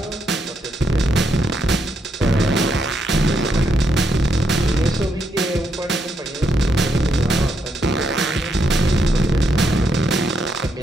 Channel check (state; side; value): normal; both; correlation 0.78